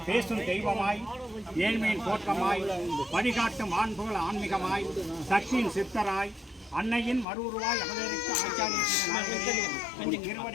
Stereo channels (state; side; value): drops out; right; at 7.2 s